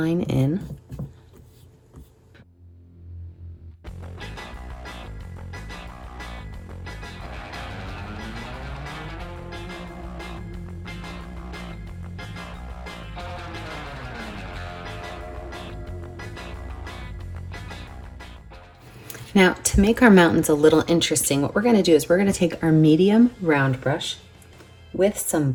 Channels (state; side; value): identical; both; correlation 1.00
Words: in. Now, to make our mountains a little interesting, what we're going to do is we're going to take our medium round brush with some